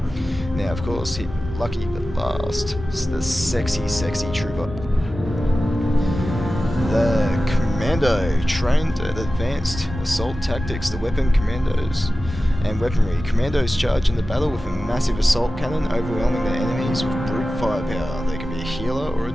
Now of course, lucky but last, is the sexy trooper. The Commando, trained at advanced assault tactics, the weapon commandos and weaponry. Commandos charge into battle with a massive assault cannon, overwhelming their enemies with brute firepower. They can be a healer or a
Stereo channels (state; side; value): normal; both; correlation 0.95